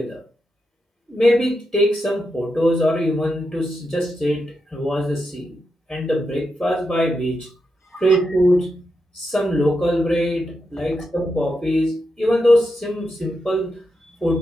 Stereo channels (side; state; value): both; normal; correlation 0.86